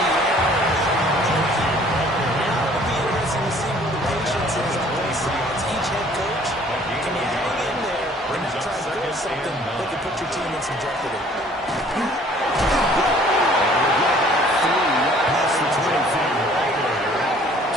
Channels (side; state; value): both; normal; correlation 0.55